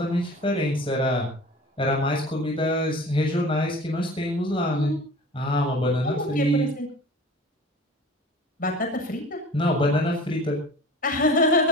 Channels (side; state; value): both; normal; correlation 0.41